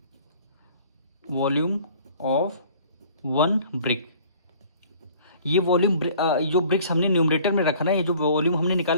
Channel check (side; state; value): both; inverted; correlation -0.52